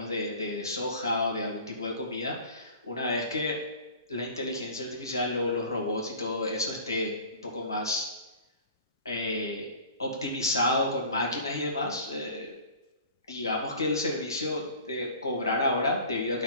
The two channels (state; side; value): inverted; both; correlation -0.44